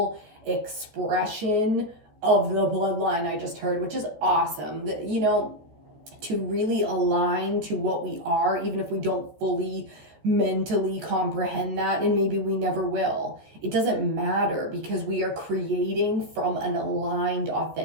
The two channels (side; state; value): left; late; 14 ms